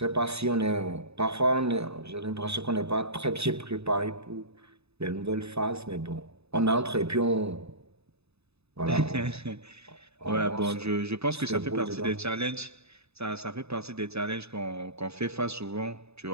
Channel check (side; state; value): left; late; 0.79 ms